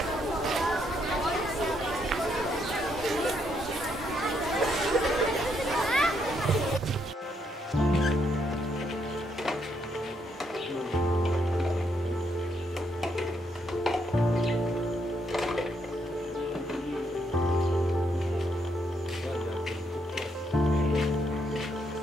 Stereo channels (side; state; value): both; normal; correlation 0.75